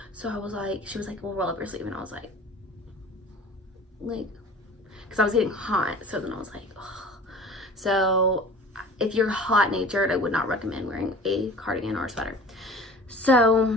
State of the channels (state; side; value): normal; both; correlation 0.43